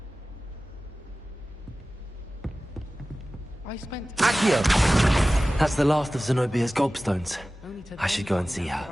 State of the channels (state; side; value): normal; both; correlation 0.96